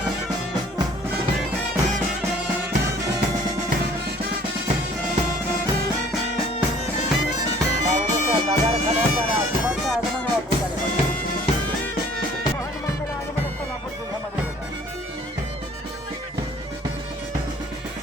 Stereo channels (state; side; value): normal; both; correlation 0.55